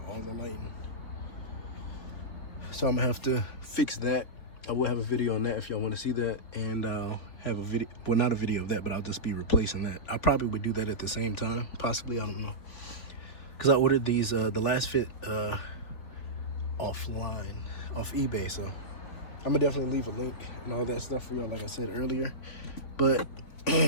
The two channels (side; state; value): right; late; 4.1 ms